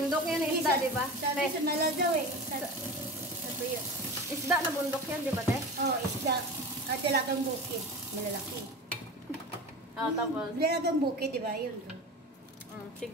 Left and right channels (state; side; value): normal; both; correlation 0.30